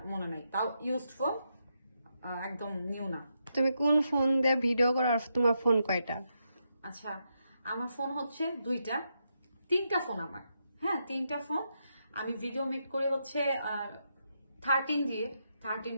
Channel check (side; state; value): both; inverted; correlation -0.83